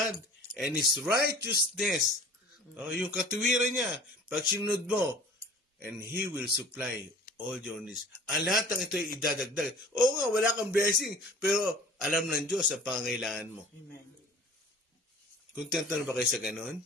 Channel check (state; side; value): normal; both; correlation 0.45